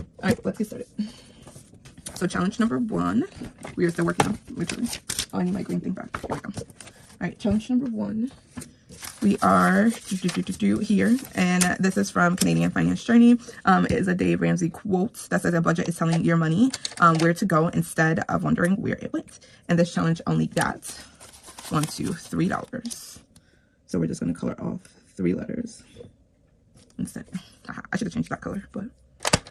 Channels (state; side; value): identical; both; correlation 1.00